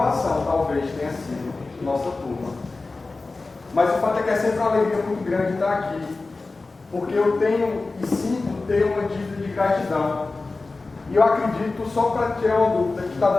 talvez, tenha sido nossa turma. Mas o fato é que é sempre uma alegria muito grande estar aqui, porque eu tenho e sinto ter uma dívida de gratidão. E eu acredito, só para tirar uma dúvida, que está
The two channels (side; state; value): right; quieter; 3.6 dB